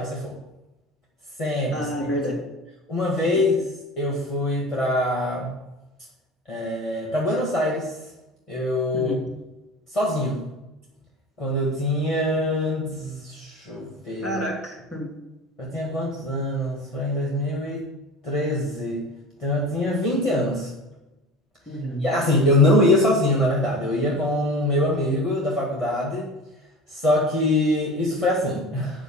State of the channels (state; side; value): normal; both; correlation 0.35